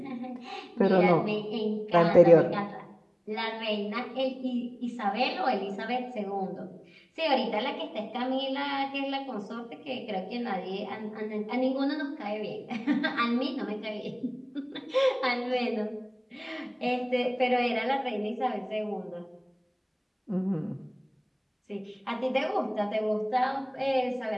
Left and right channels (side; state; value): both; identical; correlation 1.00